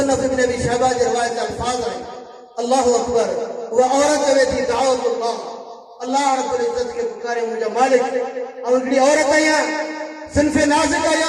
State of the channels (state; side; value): identical; both; correlation 1.00